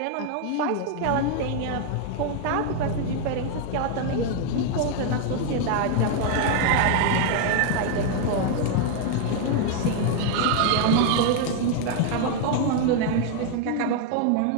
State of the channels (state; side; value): different; both; correlation 0.00